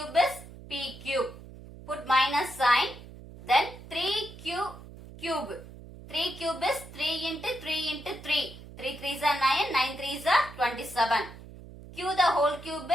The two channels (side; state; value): right; noise; hum, 16 dB below the sound